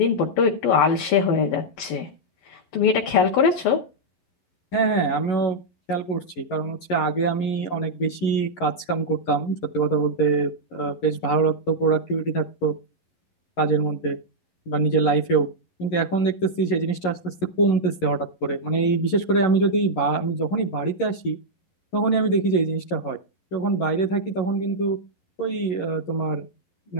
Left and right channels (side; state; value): right; late; 11 ms